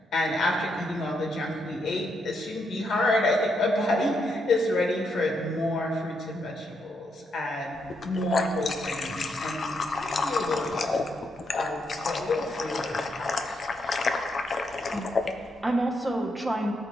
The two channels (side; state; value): both; normal; correlation 0.79